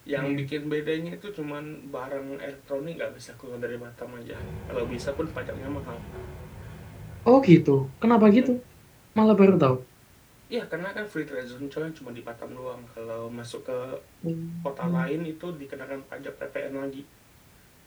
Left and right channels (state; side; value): identical; both; correlation 1.00